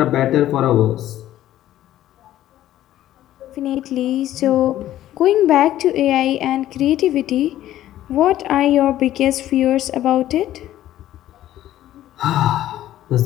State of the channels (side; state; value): right; quieter; 13.2 dB